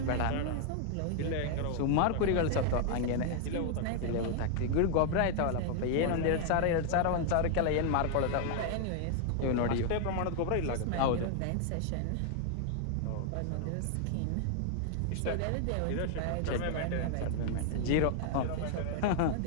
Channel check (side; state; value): both; different; correlation 0.00